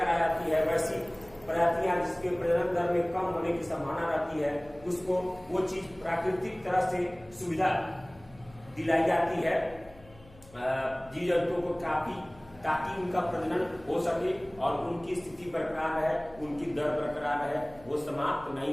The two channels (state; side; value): noise; left; hum, 23 dB below the sound